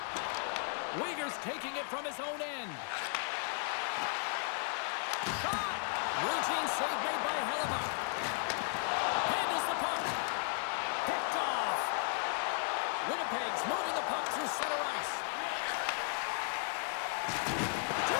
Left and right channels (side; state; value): right; silent; 54 dB below the other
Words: Uyghur's taking it from his own end. Shot! Routine save made by Hellebuck. Handles the puck. Picked off. Winnipeg's moving the puck through center ice.